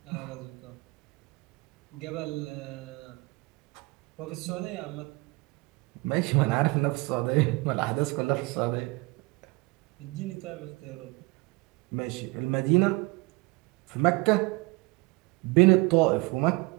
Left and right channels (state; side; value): quieter; left; 24.4 dB